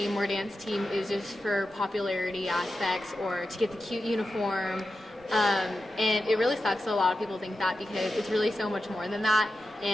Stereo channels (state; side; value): normal; both; correlation 0.90